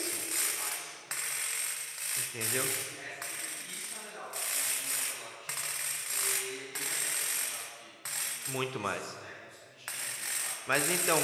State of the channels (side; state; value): both; identical; correlation 1.00